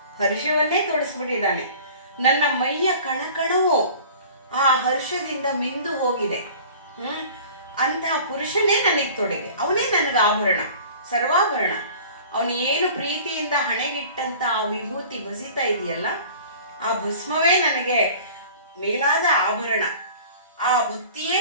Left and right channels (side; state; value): both; inverted; correlation -0.44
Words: ಹರ್ಷವನ್ನೇ ತೊಡಿಸ್ಬಿಟ್ಟಿದ್ದಾನೆ. ನನ್ನ ಮೈಯ ಕಣಕಣವು ಆ ಹರ್ಷದಿಂದ ಮಿಂದು ಹೋಗಿದೆ. ಅಂತಹ ಪುರುಷನೇ ನನಗೆ ತೊಡೆಗೆ, ಅವನೇ ನನಗೆ ಆಭರಣ, ಸರ್ವಾಭರಣ. ಅವನು ಏನು ಪ್ರೀತಿಯಿಂದ ಹಣೆಗಿಟ್ಟಂತ ಆ ವಿಭೂತಿ ಬಸಿತಾ ಇದೆಯಲ್ಲ, ಆ ಭಸ್ಮವೇ ನನಗೆ ಮೇಲಾದ ಆಭರಣ, ಆ ಭಕ್ತಿಯೇ